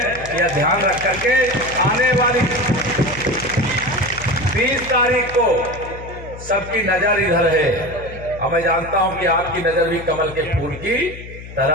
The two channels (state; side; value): noise; left; hum, 14 dB below the sound